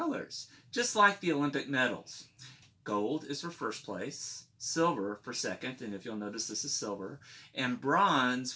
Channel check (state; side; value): identical; both; correlation 1.00